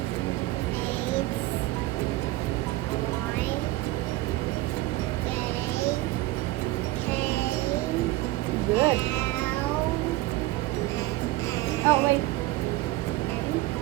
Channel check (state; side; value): quieter; left; 18.2 dB